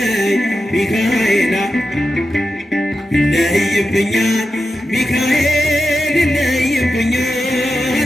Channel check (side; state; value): both; normal; correlation 0.90